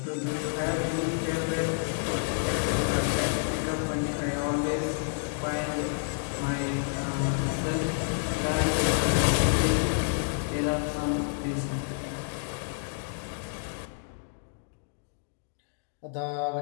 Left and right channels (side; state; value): right; silent; digital silence